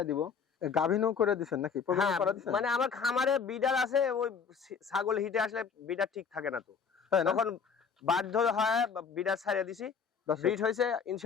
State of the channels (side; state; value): right; quieter; 6.2 dB